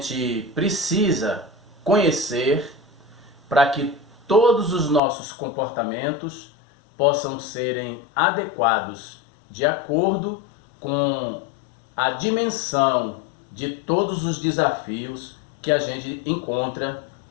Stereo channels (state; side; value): drops out; right; at 5.0 s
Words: precisa conhecer para que todos os nossos comportamentos possam serem adequados de acordo com a dimensão de todos os desafios que a gente encontra